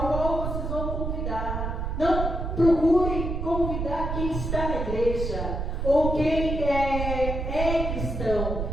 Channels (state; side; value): noise; right; rumble, 3 dB below the sound